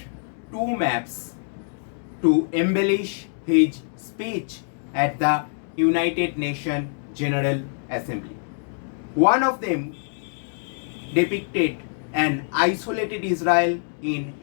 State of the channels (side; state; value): right; silent; digital silence